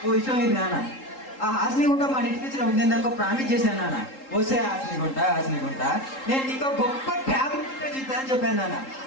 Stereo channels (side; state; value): right; late; 3.8 ms